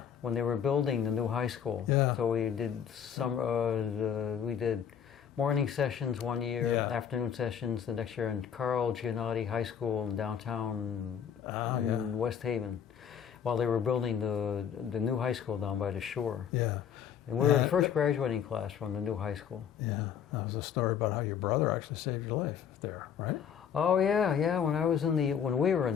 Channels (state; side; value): quieter; right; 8.3 dB